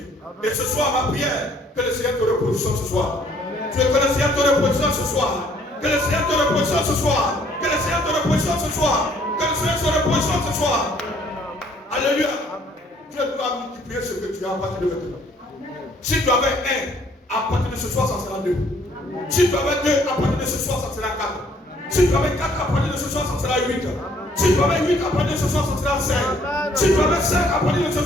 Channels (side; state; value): both; normal; correlation 0.62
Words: Et ce soir, ma prière, que le Seigneur te repositionne ce soir. Que le Seigneur te repositionne ce soir. Que le Seigneur te repositionne ce soir. Que le Seigneur te repositionne ce soir. Que le Seigneur te repositionne ce soir. Alléluia. Dieu doit multiplier ce que tu as à partir de maintenant. Si tu avais un, à partir de ce soir, ça sera deux. Si tu avais 2, à partir de ce soir, ça sera 4. Si tu avais 4, à partir de ce soir, ça sera 8. Si tu avais 8, à partir de ce soir, ça sera 5. Si tu avais 5, à partir de ce